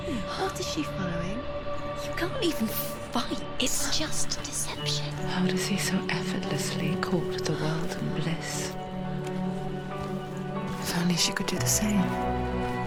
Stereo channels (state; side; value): identical; both; correlation 1.00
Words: What is she following? You can't even fight. It's just deception. How does he so effortlessly court the world and bliss? If only she could do the same.